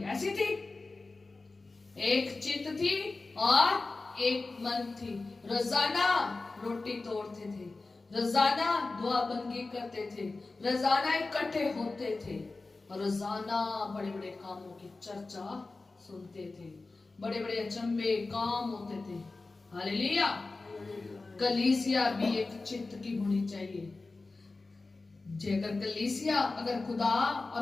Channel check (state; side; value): quieter; right; 3.5 dB